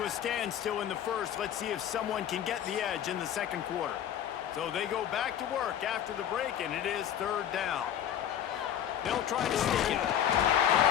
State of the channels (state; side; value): quieter; right; 10.0 dB